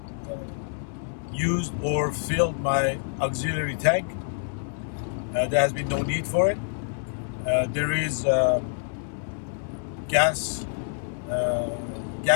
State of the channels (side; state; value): right; silent; 60 dB below the other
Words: used or filled my auxiliary tank. There has been no need for it. There is gas